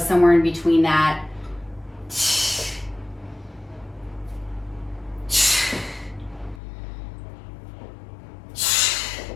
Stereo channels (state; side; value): drops out; right; at 6.6 s